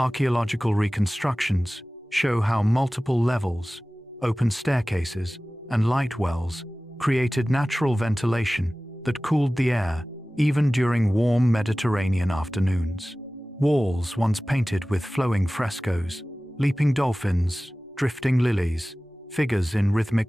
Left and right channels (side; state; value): both; normal; correlation 0.97